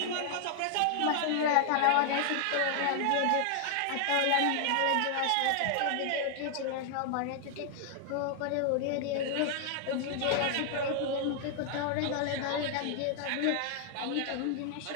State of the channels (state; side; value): different; both; correlation 0.00